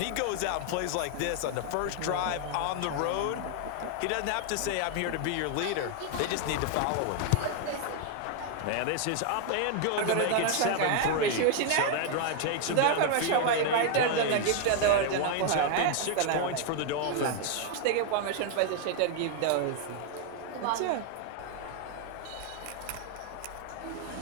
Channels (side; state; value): both; different; correlation 0.00